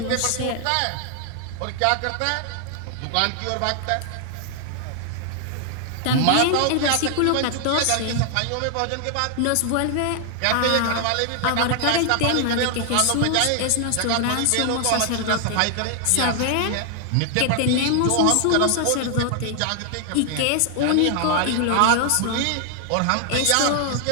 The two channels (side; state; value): both; different; correlation 0.00